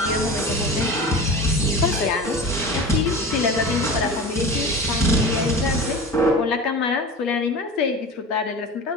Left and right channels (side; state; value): both; normal; correlation 0.33